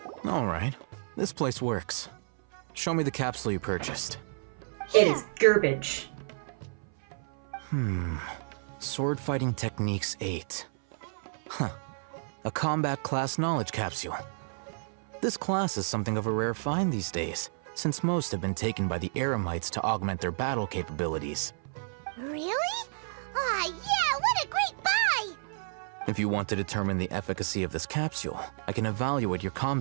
Alright, this place works. Show me the capsule you purchased. It is garbage. Sword Fighting Techniques 8. Huh. A combat class knowledge capsule. This class is something of a rare find these days, since most have been taken by the Eremites to augment their battle capabilities. Really? Aw, yeah, what a great buy! If you want to determine the efficacy of this capsule, I can evaluate your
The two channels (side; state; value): left; silent; 57 dB below the other